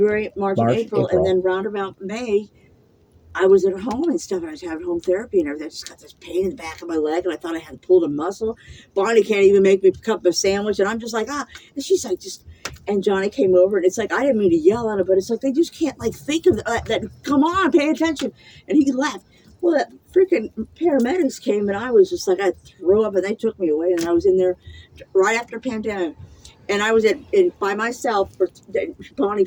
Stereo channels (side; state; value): both; identical; correlation 1.00